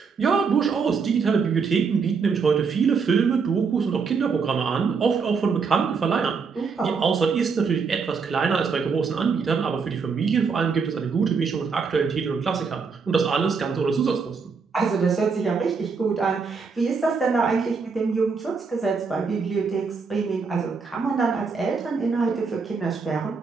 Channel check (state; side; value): quieter; left; 5.3 dB